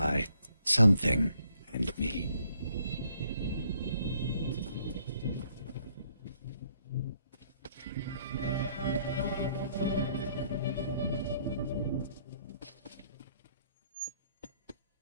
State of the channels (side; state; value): both; inverted; correlation -0.68